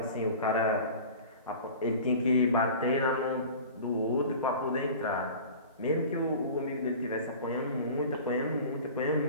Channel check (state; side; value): inverted; both; correlation -0.39